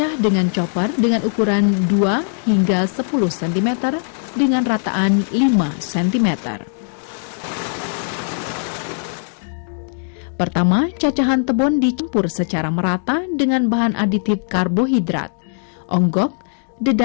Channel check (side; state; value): right; silent; digital silence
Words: dengan chopper dengan ukuran 2 hingga 10 cm dengan rataan 5 cm. Pertama, cacahan tebon dicampur secara merata dengan bahan aditif karbohidrat, onggok,